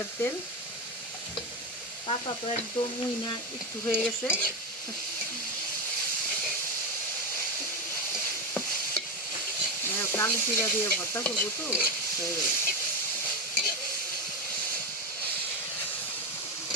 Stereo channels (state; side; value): normal; both; correlation 0.13